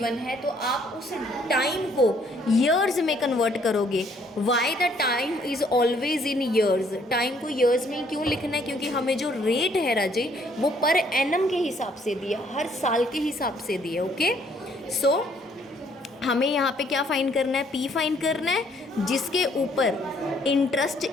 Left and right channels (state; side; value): normal; both; correlation 0.65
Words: है तो आप उस टाइम को ईयर्स में कन्वर्ट करोगे। Why the time is always in years, time को ईयर्स में क्यों लिखना है, क्योंकि हमें जो रेट है राजे वो पर एनम के हिसाब से दिया, हर साल के हिसाब से दिया। ओके, सो हमें यहाँ पे क्या फाइंड करना है, पी फाइंड करना है, जिसके ऊपर इंटरेस्ट